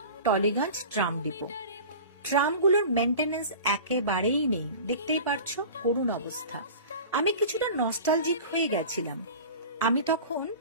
টলিগঞ্জ ট্রাম ডিপো। ট্রামগুলোর মেনটেনেন্স একেবারেই নেই, দেখতেই পারছো করুণ অবস্থা। আমি কিছুটা নস্টালজিক হয়ে গেছিলাম। আমি তখন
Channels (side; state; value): both; inverted; correlation -0.37